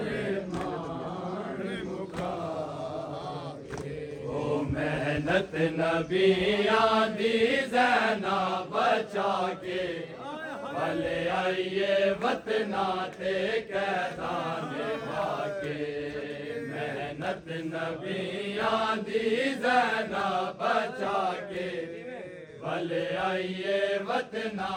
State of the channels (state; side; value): identical; both; correlation 1.00